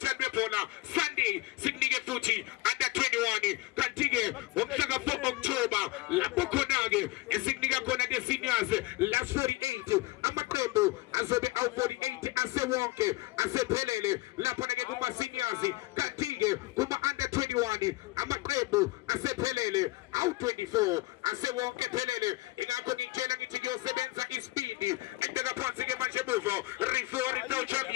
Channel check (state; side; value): quieter; right; 20.8 dB